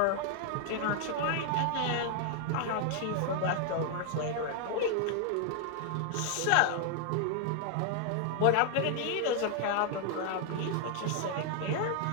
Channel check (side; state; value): both; different; correlation 0.00